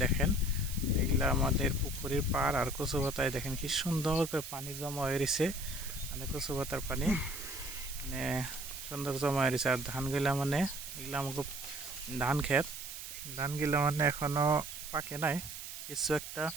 দেখেন এগুলা আমাদের পুকুরের পাড় আর কচু পাতায় দেখেন কি সুন্দর করে পানি জমা হয়ে রয়েছে, মানে কচু পাতার পানি মানে সুন্দর জমা হয়ে রয়েছে। আর ধানগুলা মানে এগুলো আমাকে ধানগুলা মানে এখনও পাকে নাই, কিছু একটা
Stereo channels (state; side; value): noise; right; hiss, 9 dB below the sound